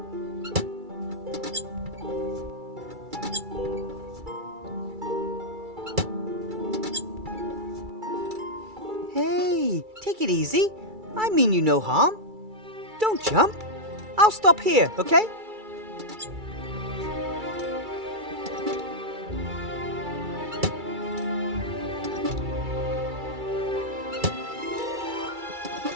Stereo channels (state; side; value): late; left; 2.3 ms